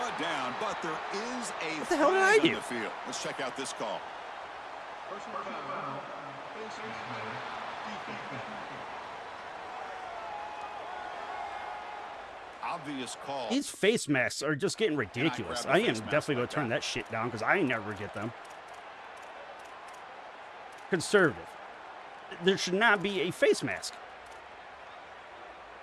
down, but there is a what the hell did I do? on the field. Let's check out this call. Obvious call. These face masks are just getting ridiculous. I am definitely going to turn that shit down because I never get them. Conservative. There should not be a face mask.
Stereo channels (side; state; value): both; identical; correlation 1.00